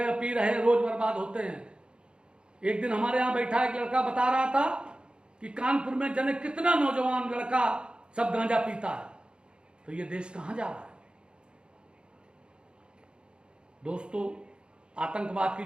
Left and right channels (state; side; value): late; left; 0.053 ms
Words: पी रहे, रोज बर्बाद होते हैं। एक दिन हमारे यहां बैठा एक लड़का बता रहा था कि कानपुर में जने कितना नौजवान लड़का सब गांजा पीता है। तो ये देश कहां जा रहा है? दोस्तों, आतंकवाद की